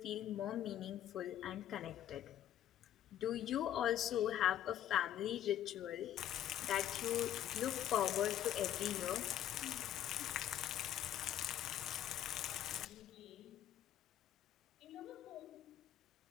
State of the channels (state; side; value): quieter; right; 11.3 dB